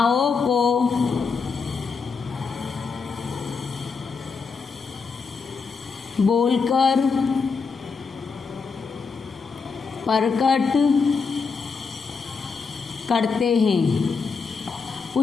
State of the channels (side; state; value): right; quieter; 5.1 dB